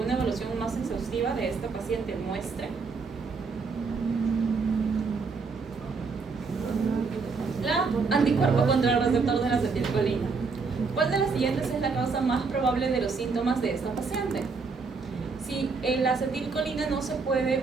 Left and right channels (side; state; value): left; quieter; 4.7 dB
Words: evaluación más exhaustiva de esta paciente muestre? La anticuerpo contra el receptor de la acetilcolina. ¿Cuál de las siguientes es la causa más probable de los síntomas de esta paciente? Si la acetilcolina no se